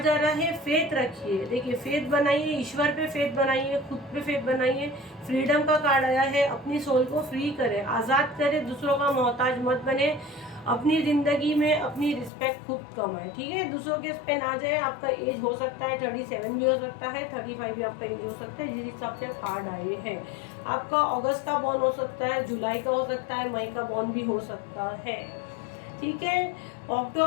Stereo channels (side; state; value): right; drops out; at 12.3 s